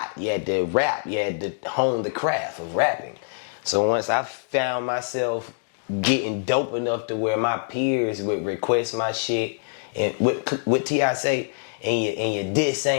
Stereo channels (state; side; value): silent; right; digital silence